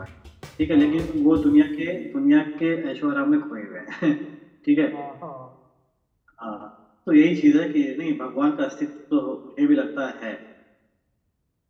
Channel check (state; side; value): identical; both; correlation 1.00